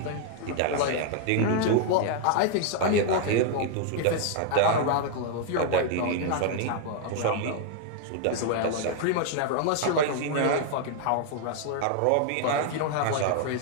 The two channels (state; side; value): different; both; correlation 0.00